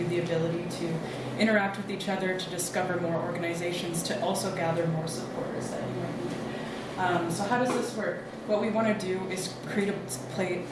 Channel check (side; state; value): both; identical; correlation 1.00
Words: the ability to interact with each other, to discover more organizations, to also gather more supporters that you might need. So how does this work? What we want to do is create